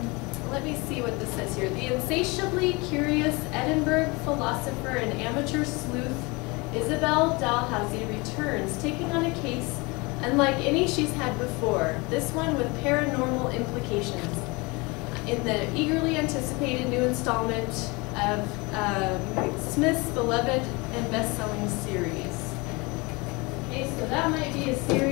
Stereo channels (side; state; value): right; quieter; 26.2 dB